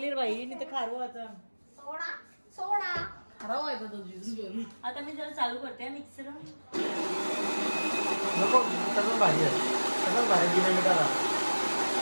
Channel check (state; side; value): inverted; both; correlation -1.00